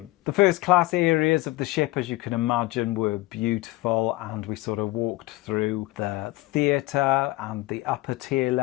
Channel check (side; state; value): right; quieter; 19.1 dB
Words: The first class areas of the ship, as you can imagine, were beautiful, and we sort of walked through the theatre and the upper tier